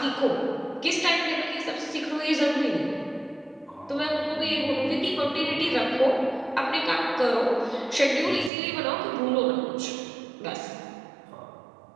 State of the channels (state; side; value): drops out; left; at 8.5 s